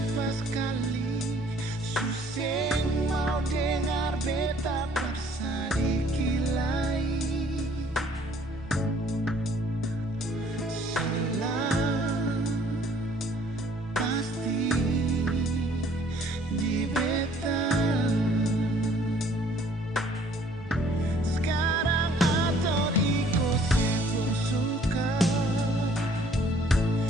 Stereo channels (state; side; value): normal; both; correlation 0.59